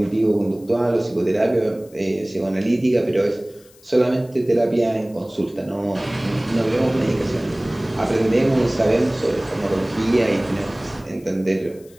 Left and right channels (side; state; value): left; noise; hiss, 27 dB below the sound